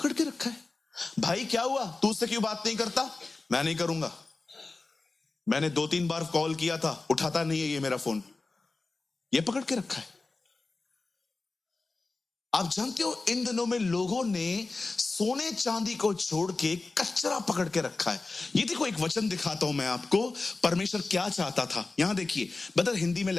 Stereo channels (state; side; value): quieter; right; 3.6 dB